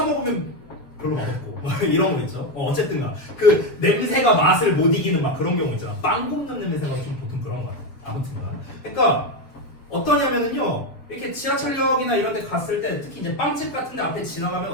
먹으면 별로 맛없고 이런 거 있죠. 어쨌든가 그 냄새가 맛을 못 이기는 막 그런 경우 있잖아. 빵 굽는 냄새가 좀 보통 그런 거 같아. 아무튼간. 그러니까 어떠냐면은요. 이렇게 지하철역이나 이런 데 갔을 때 특히 이제 빵집 같은 데 앞에 지나가면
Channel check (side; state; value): right; late; 7.4 ms